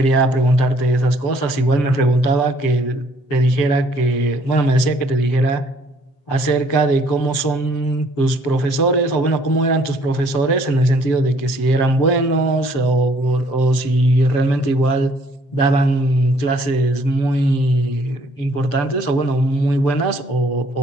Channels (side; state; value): right; late; 7.6 ms